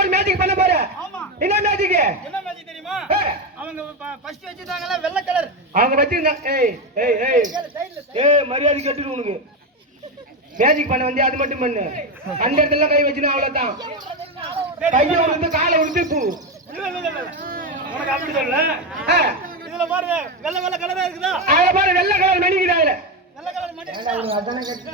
ஒரு மேஜிக் பண்ண போற ஆமா என்ன மேஜிக் தெரியுமா அவங்க ஃபர்ஸ்ட் வச்சிட்டாங்கல வெள்ளை கலர் அவங்க வச்சிருந்தா ஏய் மரியாதை கேட்டுடு உனக்கு மேஜிக் பண்ண வந்து அது மட்டும் பண்ணு அந்த இடத்துல கை வச்சினா அவ்வளவுதான் கைய உடுத்து காலை உடுத்து பூ உனக்கு அப்படி சொல்ல இதுல பாருங்க வெள்ளை கலரா இருக்குதா அத பாரு வெள்ளை கலர் மணிக்குதா அதுல வெள்ளை கலர் மணி இருக்குதா அதானே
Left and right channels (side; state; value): both; normal; correlation 0.12